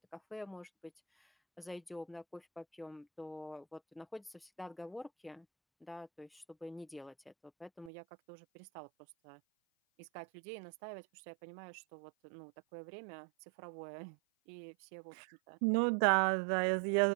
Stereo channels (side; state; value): left; drops out; at 7.9 s